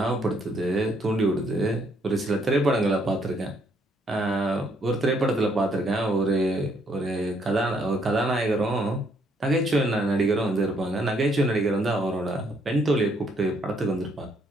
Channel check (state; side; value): normal; both; correlation 0.69